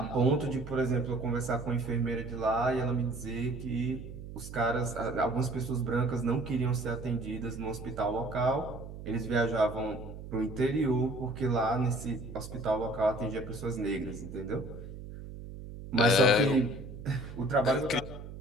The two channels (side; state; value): right; noise; hum, 12 dB below the sound